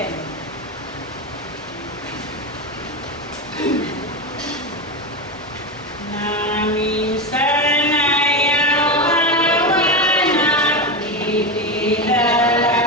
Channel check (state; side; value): noise; left; hum, 26 dB below the sound